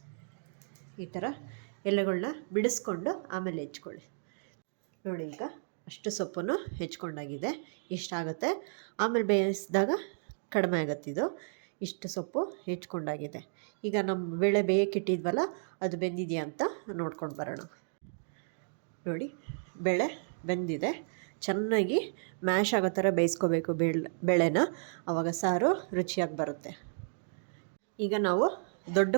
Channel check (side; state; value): left; silent; digital silence